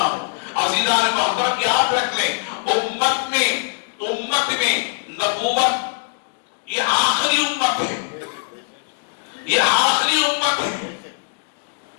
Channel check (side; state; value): right; silent; digital silence